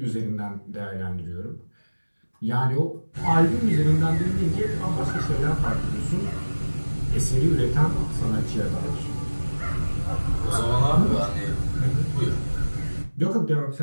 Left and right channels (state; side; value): inverted; both; correlation -1.00